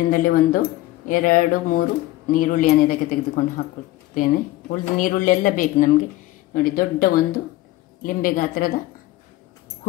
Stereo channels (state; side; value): quieter; right; 17.0 dB